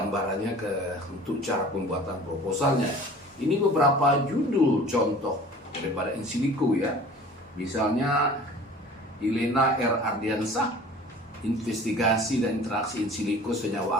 untuk cara pembuatan proposalnya. Ini beberapa judul contoh daripada in silico ya. Misalnya Elena R. Ardiansah, investigasi dan interaksi in silico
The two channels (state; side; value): normal; both; correlation 0.44